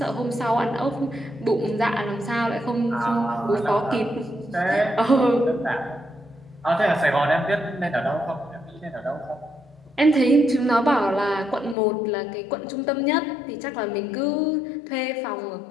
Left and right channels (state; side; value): drops out; right; at 11.8 s